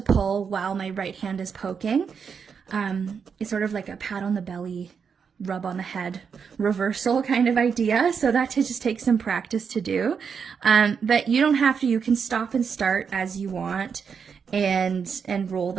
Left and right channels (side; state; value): left; quieter; 6.4 dB